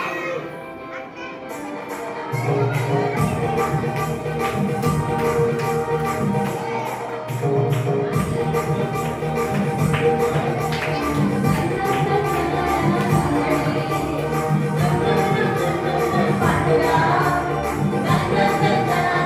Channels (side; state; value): both; identical; correlation 1.00